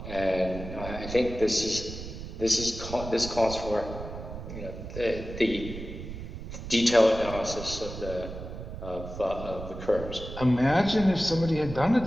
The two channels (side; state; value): right; noise; rumble, 10 dB below the sound